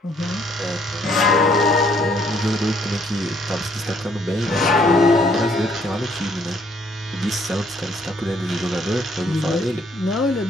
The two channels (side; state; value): both; normal; correlation 0.65